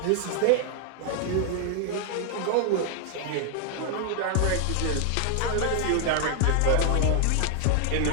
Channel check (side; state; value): both; different; correlation 0.00